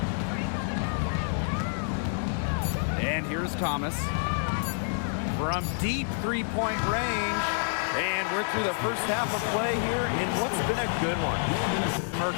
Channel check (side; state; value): right; silent; digital silence